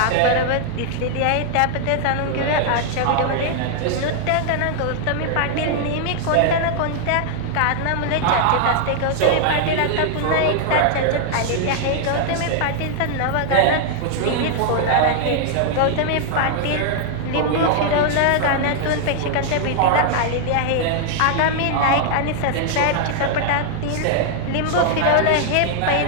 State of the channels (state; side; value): different; both; correlation 0.00